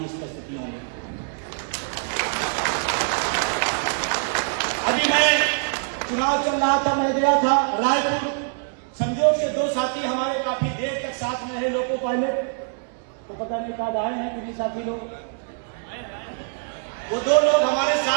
इस परिस्थितियों में। अभी मैं चुनाव चल रहा था, मैं गया था रायपुर, संजोग से दो साथी हमारे काफी देर तक साथ में रहे लोको पायलट, तो पता नहीं कब आए हैं किसी साथी लोग, वो दो लोग हमारे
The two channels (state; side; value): silent; left; digital silence